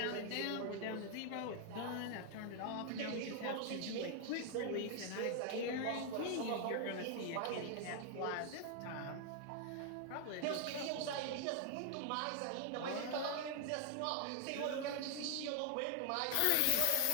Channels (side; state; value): both; different; correlation 0.00